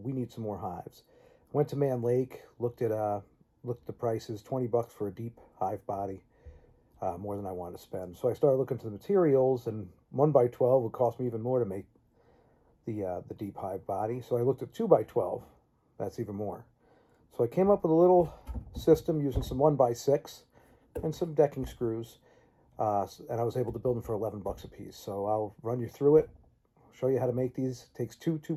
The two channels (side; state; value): both; identical; correlation 1.00